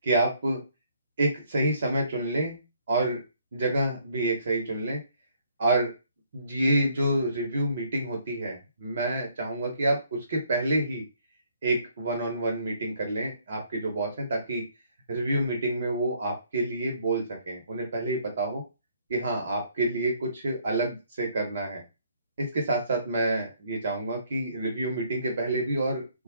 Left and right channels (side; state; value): both; inverted; correlation -0.65